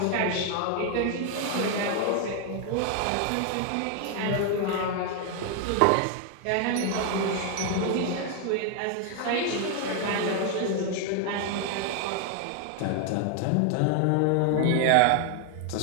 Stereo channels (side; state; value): both; different; correlation 0.00